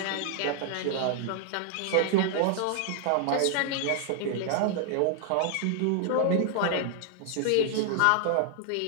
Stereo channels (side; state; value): both; different; correlation 0.00